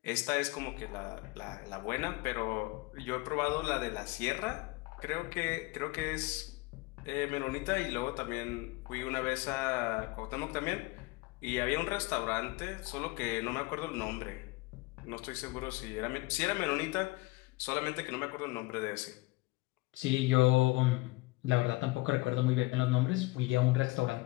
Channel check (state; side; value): quieter; right; 22.9 dB